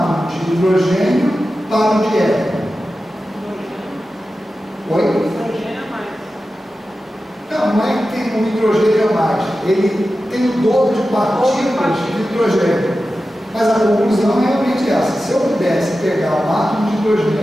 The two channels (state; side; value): normal; both; correlation 0.93